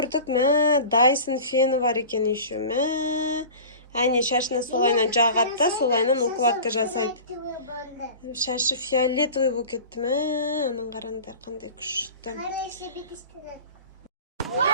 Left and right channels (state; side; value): inverted; both; correlation -0.37